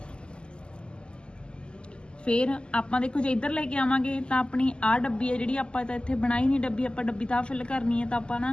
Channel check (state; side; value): late; right; 0.049 ms